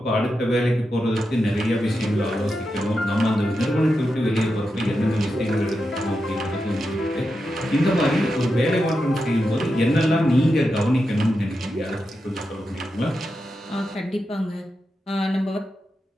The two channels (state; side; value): normal; both; correlation 0.88